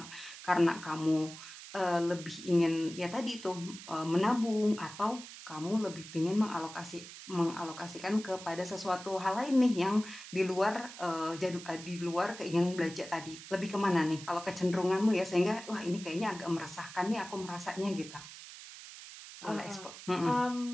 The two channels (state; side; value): noise; right; hiss, 14 dB below the sound